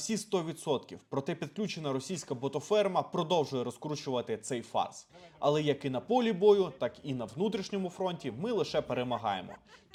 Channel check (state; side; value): identical; both; correlation 1.00